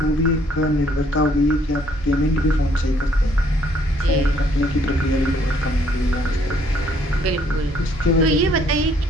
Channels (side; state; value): both; normal; correlation 0.65